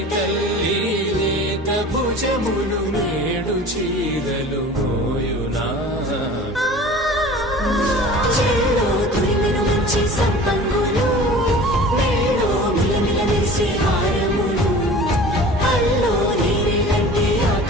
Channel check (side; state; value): both; normal; correlation 0.41